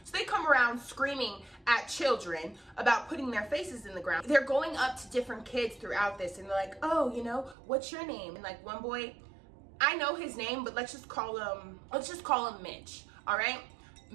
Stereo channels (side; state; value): left; drops out; at 7.6 s